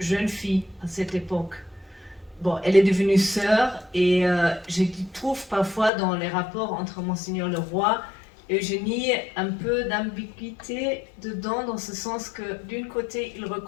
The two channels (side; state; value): right; drops out; at 5.9 s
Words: fille à cette époque. Bon, elle est devenue sœur et je trouve parfois dans les rapports entre Monseigneur le Roi et Eugénie un peu d'ambiguïté dedans, dans ce sens que d'une côté il